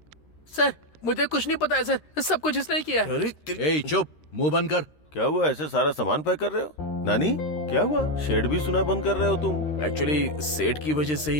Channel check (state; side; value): late; right; 13 ms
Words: Sir मुझे कुछ नहीं पता है सर, सब कुछ इसने किया है। ए चुप, मुंह बंद कर। क्या हुआ, ऐसे सारा सामान पैक कर रहे हो? नानी क्या हुआ, शेड भी सुना बंद कर रहे हो तुम? एक्चुअली शेड की वजह से